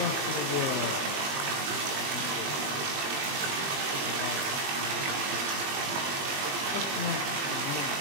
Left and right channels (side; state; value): left; late; 20 ms